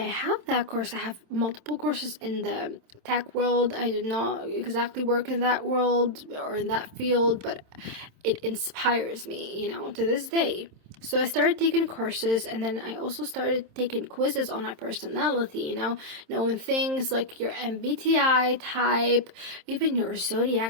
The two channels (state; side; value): late; left; 27 ms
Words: have that course. I have multiple courses in the tech world. I did not exactly work in that world or in that field, but it inspires me, you know, to this day. So I started taking courses, and then I also started taking quizzes on my personality, you know, knowing things like your MBTI type, even your